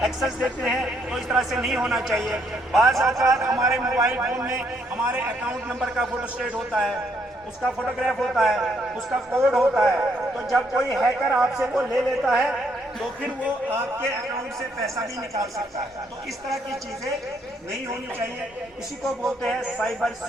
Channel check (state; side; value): normal; both; correlation 0.72